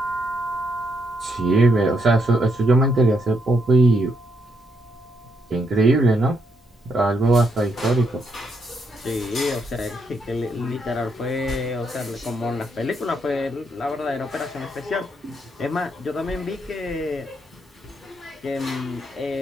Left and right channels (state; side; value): normal; both; correlation 0.76